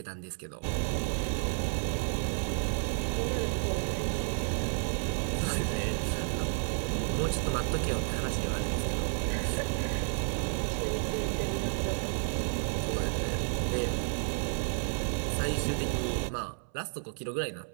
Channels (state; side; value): silent; left; 57 dB below the other